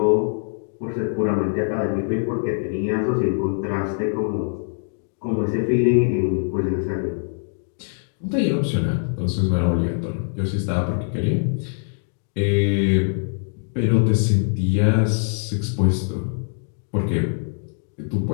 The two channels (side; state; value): right; silent; digital silence